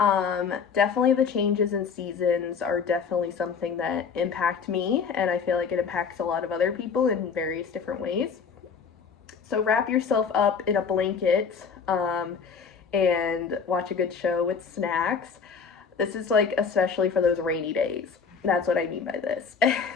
definitely the changes in seasons are definitely something that impact me, and I feel like it impacts a lot of other people in various different ways. So wrap yourself up in a blanket and watch a good show with snacks. This is like especially for those rainy days. That's what I mean by this.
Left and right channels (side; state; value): right; quieter; 6.0 dB